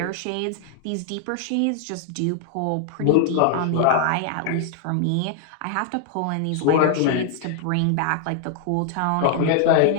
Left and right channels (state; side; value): different; both; correlation 0.00